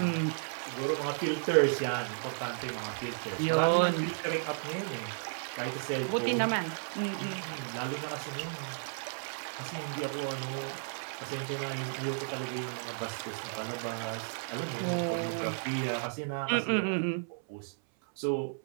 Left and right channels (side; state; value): left; silent; 56 dB below the other